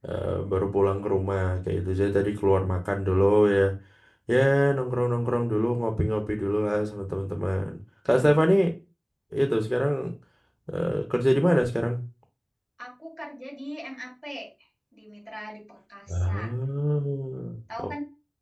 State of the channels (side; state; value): both; identical; correlation 1.00